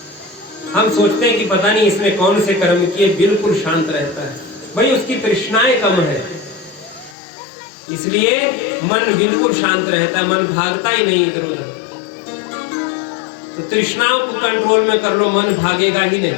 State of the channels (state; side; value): drops out; right; at 7.2 s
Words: हम सोचते हैं कि पता नहीं इसने कौन से कर्म किए, बिल्कुल शांत रहता है। भाई उसकी तृष्णाएं कम है, इसलिए मन बिल्कुल शांत रहता है, मन भागता ही नहीं इधर उधर। तो तृष्णाओं को कंट्रोल में कर लो, मन भागेगा ही